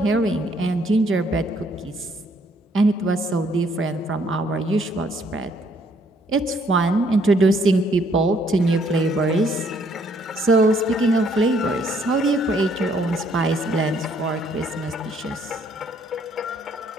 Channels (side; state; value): both; normal; correlation 0.67